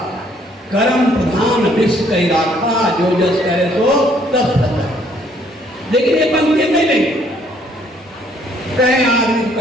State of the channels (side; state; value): both; normal; correlation 0.65